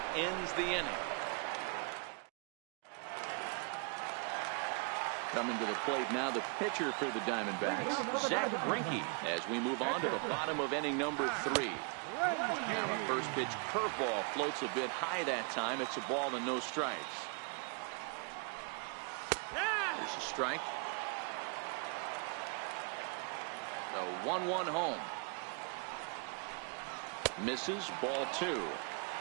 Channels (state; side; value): quieter; left; 37.4 dB